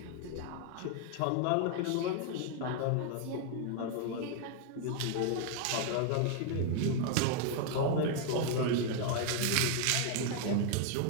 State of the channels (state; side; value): different; both; correlation 0.00